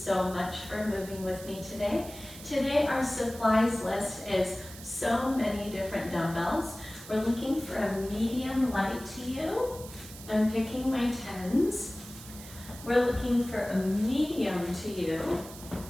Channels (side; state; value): right; noise; hiss, 15 dB below the sound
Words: much for moving with me today. Today our supplies list is so many different dumbbells. We're looking for a medium light to you. I'm picking my 10s. We're looking for a medium to you.